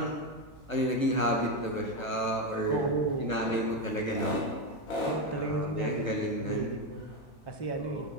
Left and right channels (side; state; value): right; late; 1.1 ms